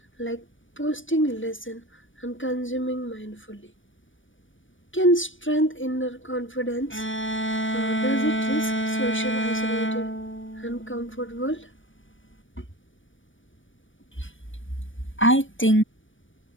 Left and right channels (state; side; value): late; right; 0.56 ms